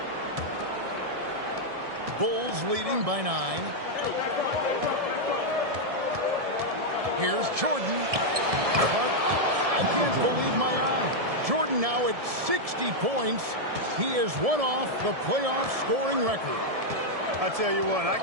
Bulls leading by 9. Here's Jordan. But I can't believe my eye. Jordan now at 60 points. He is one off the playoff scoring record. I tell you what, I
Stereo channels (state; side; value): late; left; 1.7 ms